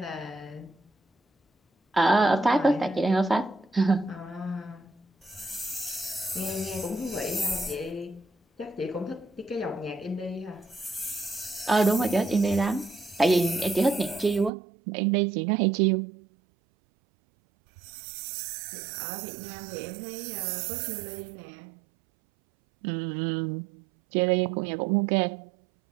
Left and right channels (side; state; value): left; drops out; at 14.5 s